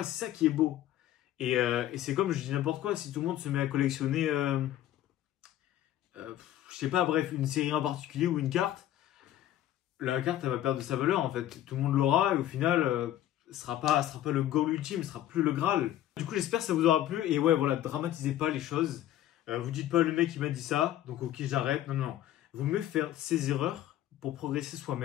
c'est ça qui est beau. Et c'est comme je dis n'importe quoi, si tout le monde se met à collectionner, je sais pas, bref, une série en particulier ou une carte, la carte elle va perdre de sa valeur en fait. Tout le monde l'aura et au final, ce sera pas le goal ultime, ce sera plus le Graal. Du coup, j'espère que ça vous aura plu et ouais, voilà, dramatisez pas les choses. Vous dites pas le mec il m'a dit ça, donc ok j'arrête. Non, non, non. Vaut mieux faire ses erreurs pour progresser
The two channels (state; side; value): quieter; right; 12.7 dB